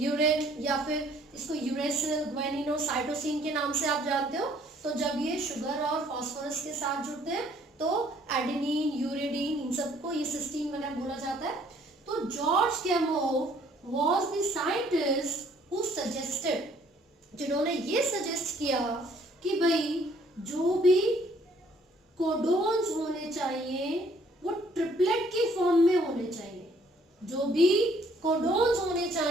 या फिर इसको यूरेसिल, ग्वानिनो, साइटोसिन के नाम से आप जानते हो. तो जब ये शुगर और फास्फोरस के साथ जुड़ते हैं तो एडेनिन, यूरेडिन, इन सबको ये सिस्टीन वगैरह बोला जाता है. तो George Gamow was the scientist who suggested, जिन्होंने ये सजेस्ट किया कि भाई जो भी कोडोन्स होने चाहिए वो ट्रिपलेट की फॉर्म में होने चाहिए. जो भी कोडोन्स होने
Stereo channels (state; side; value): normal; both; correlation 0.62